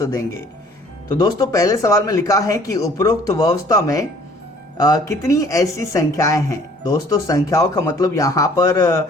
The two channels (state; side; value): normal; both; correlation 0.55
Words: देंगे. तो दोस्तों, पहले सवाल में लिखा है कि उपरोक्त व्यवस्था में कितनी ऐसी संख्याएं हैं. दोस्तों, संख्याओं का मतलब यहाँ पर